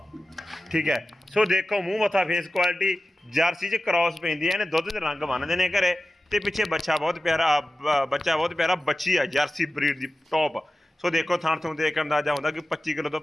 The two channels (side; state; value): both; normal; correlation 0.94